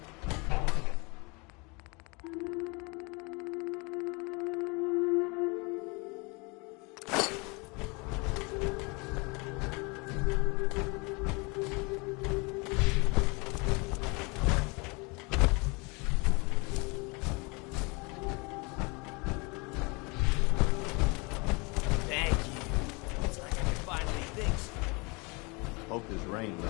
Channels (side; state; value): right; quieter; 28.8 dB